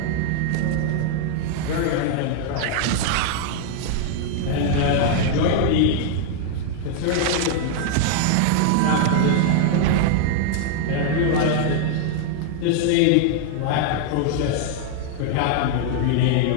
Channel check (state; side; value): different; both; correlation 0.00